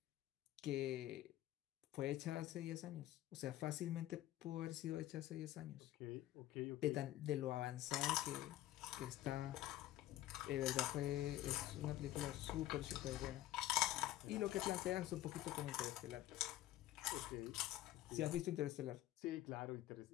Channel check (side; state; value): right; quieter; 14.2 dB